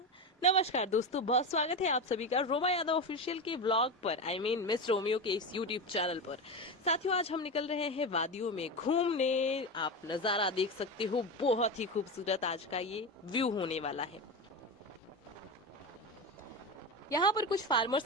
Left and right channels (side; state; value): both; normal; correlation 0.19